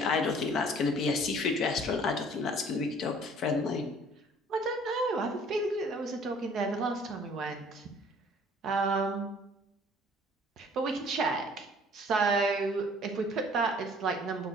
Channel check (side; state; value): both; normal; correlation 0.54